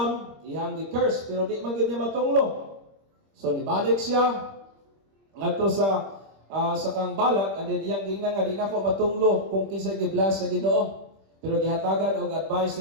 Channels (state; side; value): late; left; 26 ms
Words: ihang gi-curse pero di man gid niya matunglo. So nibalik siya ngadto sa kang Balak, and then iyang gingnan nga di na ko matunglo kung kinsa gi-bless sa Ginoo. Pero gihatagan og advice